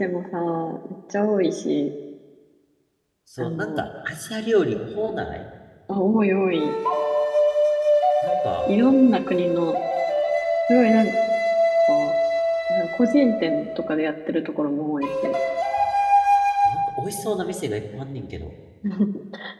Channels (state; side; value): identical; both; correlation 1.00